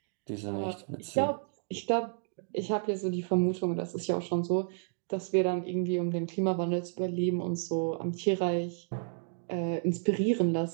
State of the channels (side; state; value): left; silent; digital silence